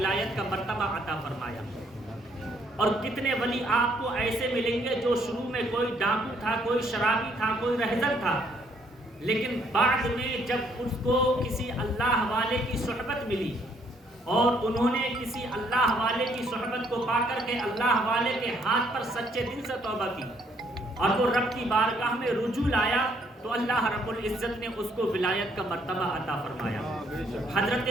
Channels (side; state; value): both; normal; correlation 0.68